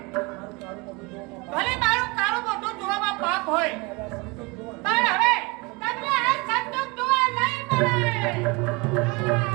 ભલે મારું કાળું મોઢું જોવામાં પાપ હોય પણ હવે તમને આ સંતોષ જોવા નહીં મળે.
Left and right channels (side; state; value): left; quieter; 26.7 dB